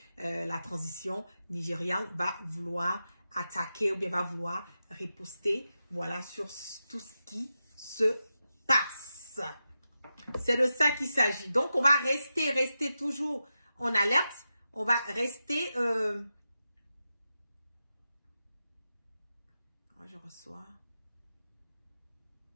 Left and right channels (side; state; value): both; inverted; correlation -0.90